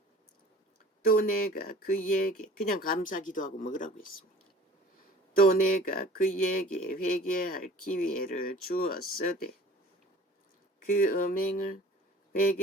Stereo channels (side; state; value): both; normal; correlation 0.46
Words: 또 내가 그에게 그냥 감사 기도하고 먹으라고 했습니다. 또 내가 그에게 회개할 기회를 주었으되 그 음행을